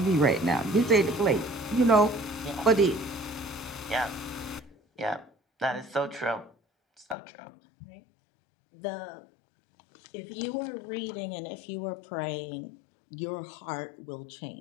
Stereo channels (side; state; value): right; drops out; at 7.2 s